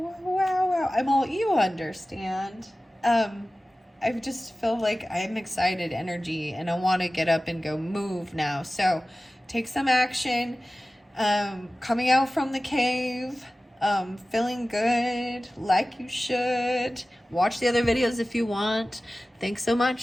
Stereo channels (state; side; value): normal; both; correlation 0.96